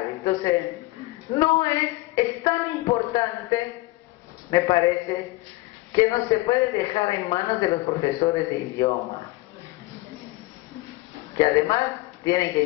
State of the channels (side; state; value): right; quieter; 20.3 dB